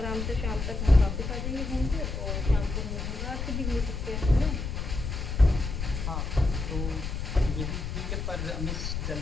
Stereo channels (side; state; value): left; noise; rumble, 4 dB below the sound